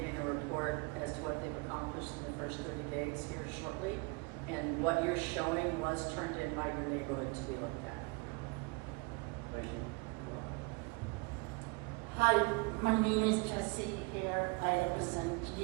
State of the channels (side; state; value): left; quieter; 28.4 dB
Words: a report as to what they've accomplished in the first 30 days here shortly. And what you're showing was turned in by your neighborhood to be looked at. Thank you. Hi, my name is Jessie here. I represent